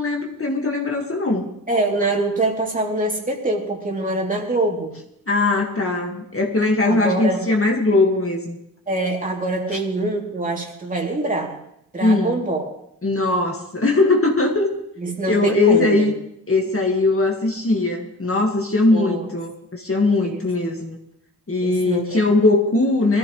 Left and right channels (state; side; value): normal; both; correlation 0.39